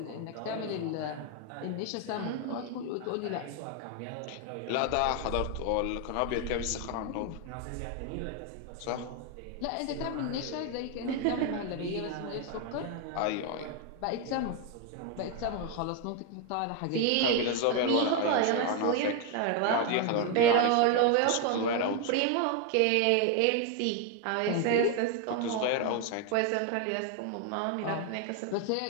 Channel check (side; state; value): both; different; correlation 0.01